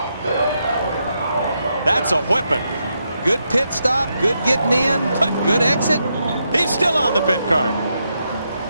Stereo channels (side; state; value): both; inverted; correlation -0.82